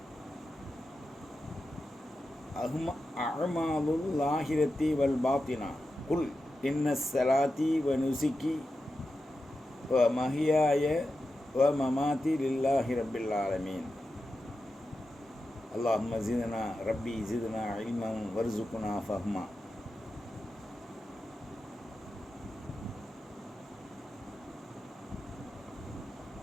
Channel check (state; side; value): normal; both; correlation 0.91